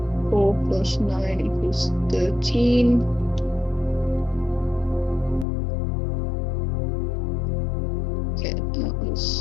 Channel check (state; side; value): drops out; right; at 5.5 s